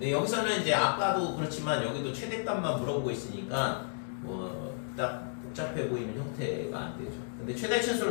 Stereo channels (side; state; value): right; silent; 56 dB below the other